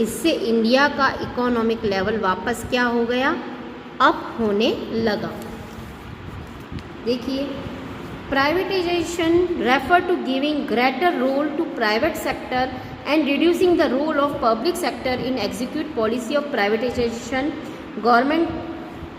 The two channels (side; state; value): both; identical; correlation 1.00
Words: इंडिया का इकोनॉमिक लेवल वापस क्या हो गया, अप होने लगा। देखिए, privatization refer to giving greater role to private sector and reducing the role of public sector in execute policy of privatization. Government